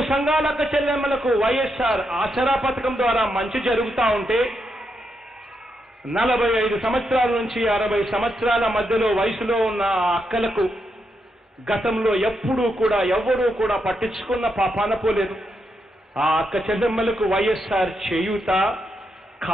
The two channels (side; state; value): both; normal; correlation 0.82